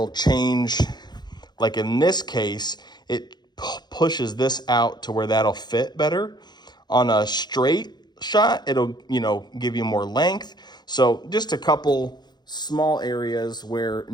change. Like in this case, it pushes this out to where that'll fit better. On a straight shot, it'll, you know, give you more length. So just a couple small areas where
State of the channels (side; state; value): right; late; 0.21 ms